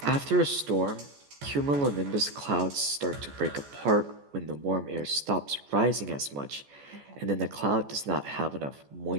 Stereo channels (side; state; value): left; late; 14 ms